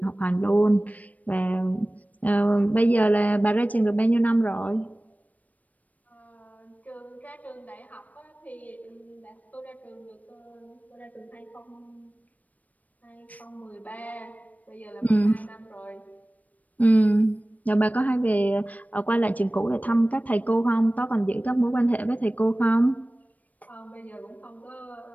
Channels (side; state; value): right; late; 0.073 ms